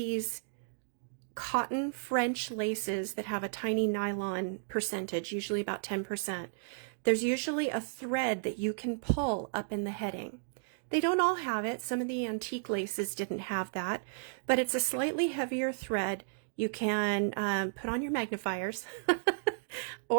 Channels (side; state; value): left; silent; digital silence